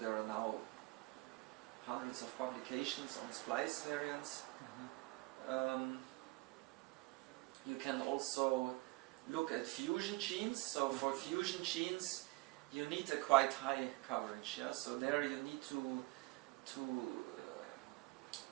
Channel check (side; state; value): left; quieter; 22.9 dB